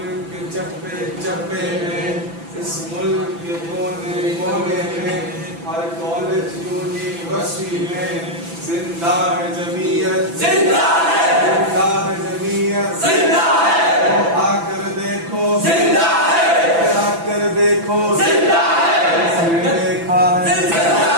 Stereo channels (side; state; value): left; late; 6.0 ms